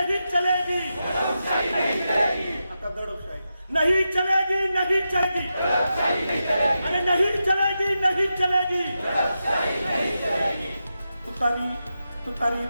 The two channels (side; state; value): both; inverted; correlation -0.89